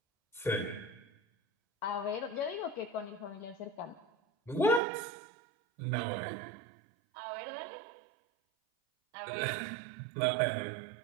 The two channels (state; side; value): drops out; left; at 4.8 s